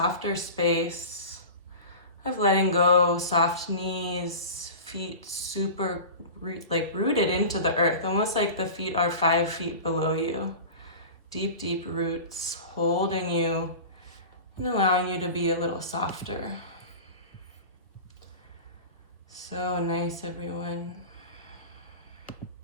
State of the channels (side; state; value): both; inverted; correlation -0.34